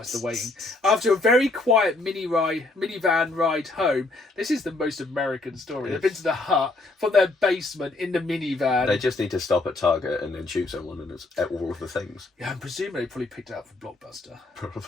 the waiting. After a very quiet minivan ride home, this is the most American story. They've been to the hut from their basement in the minivan. They just need to stop at Target and then shoot someone, and it's all of the things. Yeah, I'm presuming they probably picked it up from Blockbuster.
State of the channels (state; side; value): quieter; right; 3.1 dB